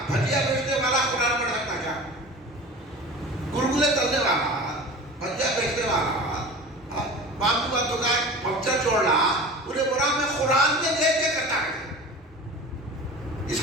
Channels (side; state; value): both; normal; correlation 0.37